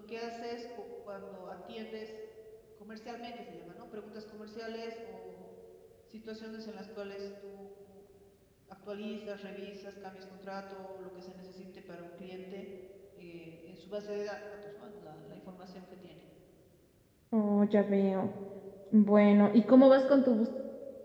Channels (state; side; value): identical; both; correlation 1.00